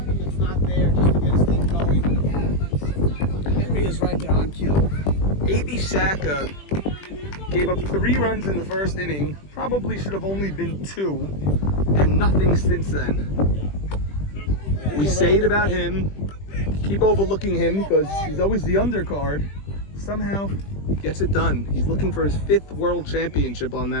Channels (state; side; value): late; right; 20 ms